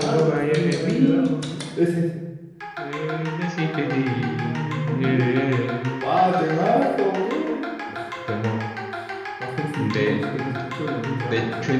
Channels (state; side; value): identical; both; correlation 1.00